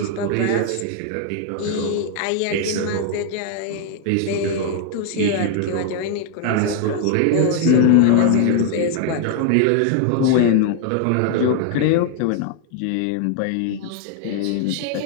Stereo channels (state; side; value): different; both; correlation 0.00